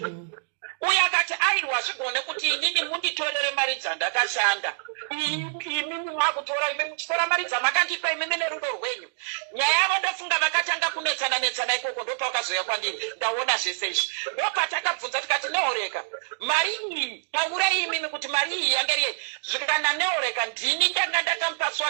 uye akati aiwa zvigone kuti inini munditorere mari dzandakashanda imimi mwakutora imi muchitora mari dzamakandipa imimi nerudo rwenyu nyaya yavo ndofunga vakatanga kunetsana ikoko ndopakazoya kwandiri ndaona zvese izvi ndopatakabvunza tikati neoreka mari iyi taura imimi kuti mari iyi yanga iri zvikana neoreka ndini ndanga ndakamupa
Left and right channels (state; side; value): silent; left; digital silence